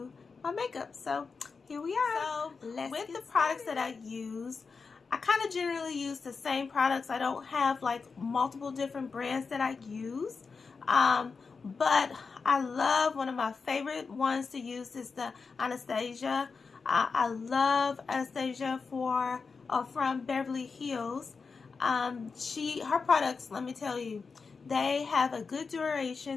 my makeup. So here we are. So with the products that I use, I kind of generally use the same products. I don't have like multiple different brands that I use. But I love, one of my favorite ones to use is the Anastasia. I love Anastasia from Beverly Hills. Her products, let me tell you, they have a good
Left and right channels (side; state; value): right; quieter; 4.9 dB